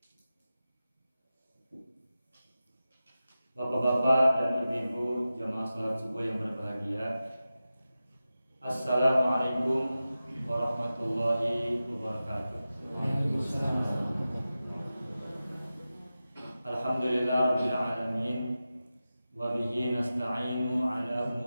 Bapak-bapak dan ibu-ibu jamaah salat subuh yang berbahagia, Assalamualaikum warahmatullahi wabarakatuh. Alhamdulillah rabbil alamin, wa bihi nasta'inu ala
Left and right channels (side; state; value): both; inverted; correlation -0.94